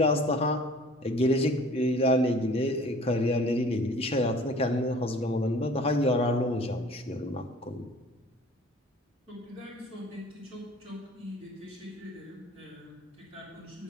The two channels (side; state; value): both; normal; correlation 0.49